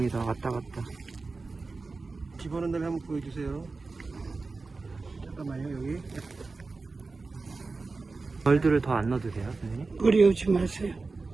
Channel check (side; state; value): left; quieter; 3.9 dB